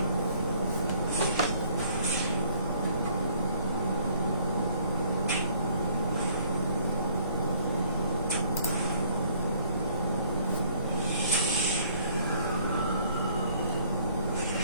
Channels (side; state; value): both; inverted; correlation -0.60